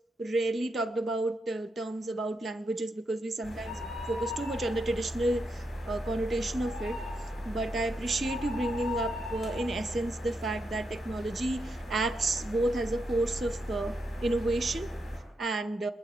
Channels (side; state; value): both; normal; correlation 0.83